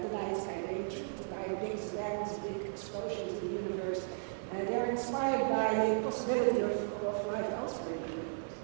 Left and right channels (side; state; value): left; silent; digital silence